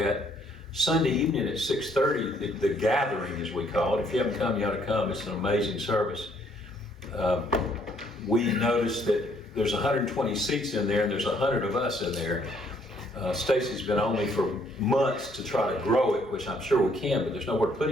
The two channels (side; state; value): both; normal; correlation 0.66